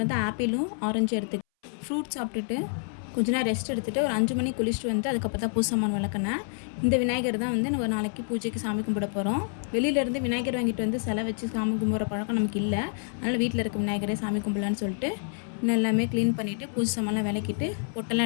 வந்து ஆப்பிளும் ஆரஞ்சும் எடுத்துக்கிட்டேன். ஃப்ரூட்ஸ் சாப்பிட்டுட்டு கொஞ்ச நேரம் ரெஸ்ட் எடுத்துகிட்டு ஒரு 5 மணிக்கு குளிச்சுட்டு வந்து அதுக்கப்புறம் தான் பூஜை சாமான் விளக்குனேன். இந்த விநாயகர் தான் வந்து நம்ம நாளைக்கு பூஜைக்கு சாமி கும்பிட போகிறோம். வெளியிலேருந்து விநாயகர் வாங்கிட்டு வந்து சிலை வச்சு சாமி கும்பிட்ற பழக்கம் நமக்கு இல்லை. அதனால் வீட்டில் இருக்க விநாயகரே சாமி கும்பிடலான்னு சொல்லிட்டு இன்னும் எல்லாமே க்ளீன் பண்ணிவிட்டு பூஜை சாமான்லாம் விளக்கிட்டு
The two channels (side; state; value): right; silent; 59 dB below the other